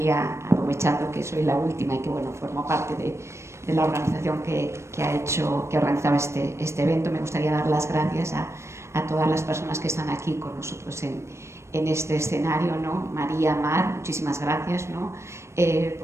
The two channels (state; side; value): late; left; 0.13 ms